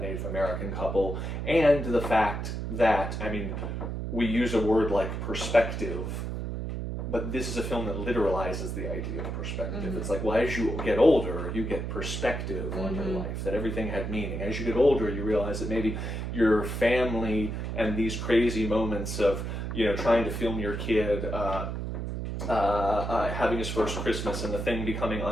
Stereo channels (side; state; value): right; noise; hum, 4 dB below the sound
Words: Native American couple, and the fact that, I mean, we use a word like perspective, but this is a film that literalizes the idea of perspective. It's like, well, as you get older, you get perspective on your life, that everything had meaning. As you get older, you realize that maybe your family and these crazy moments of, trying to film your kid having his first Christmas and the thing becoming